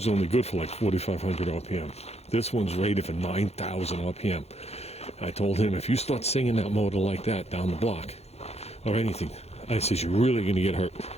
only good for like 4,500 RPM. This one's rated for 9,000 RPM. I told him, if you start singing that motor like that down the block, or anything, I said, you're really going to get hurt.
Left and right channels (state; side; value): late; right; 0.31 ms